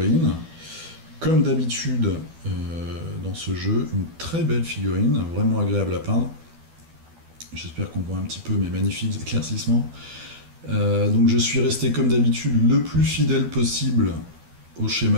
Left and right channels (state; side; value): late; left; 12 ms